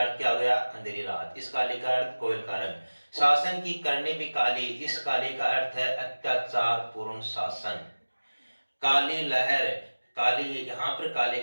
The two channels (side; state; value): both; inverted; correlation -1.00